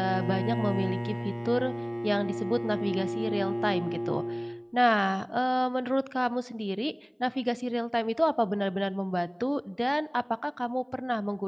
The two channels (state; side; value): identical; both; correlation 1.00